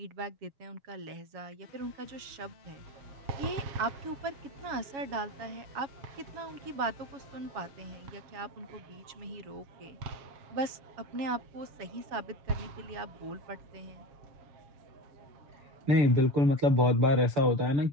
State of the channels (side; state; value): left; late; 7.2 ms